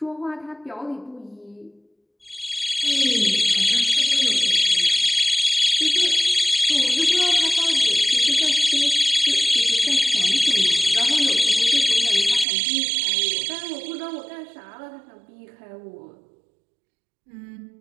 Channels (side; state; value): left; drops out; at 12.5 s